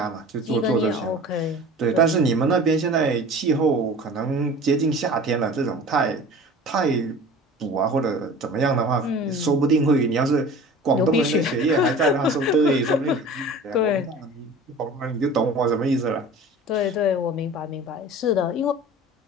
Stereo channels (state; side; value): normal; both; correlation 0.40